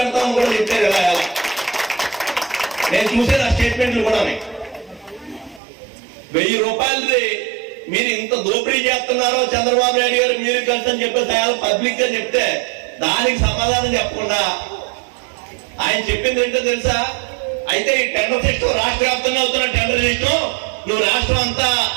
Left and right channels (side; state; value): left; drops out; at 5.6 s